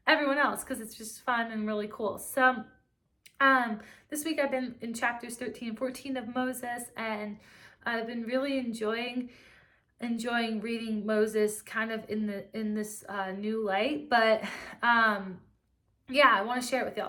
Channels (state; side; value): identical; both; correlation 1.00